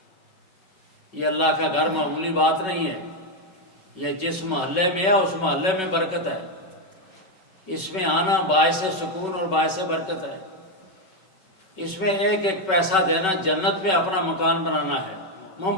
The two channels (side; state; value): right; late; 5.3 ms